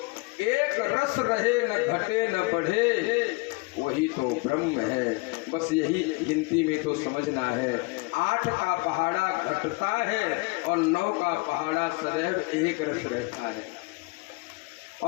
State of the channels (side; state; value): right; quieter; 27.1 dB